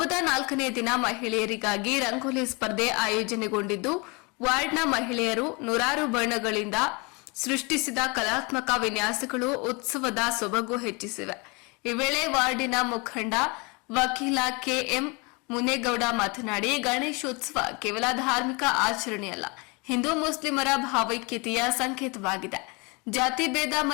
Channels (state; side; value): quieter; right; 29.1 dB